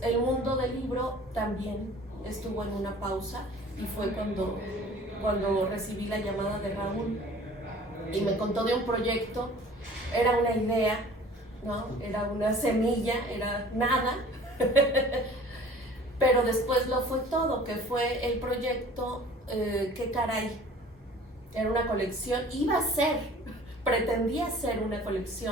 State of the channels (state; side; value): normal; both; correlation 0.48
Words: el mundo del libro también estuvo en una pausa y fue cuando recibí la llamada de Raúl y me contó de un proyecto. Era una idea, ¿no? Era una semilla, era nada, pero después lo fue todo, que fue el proyecto Qué caray. Era una colección, pretendía ser una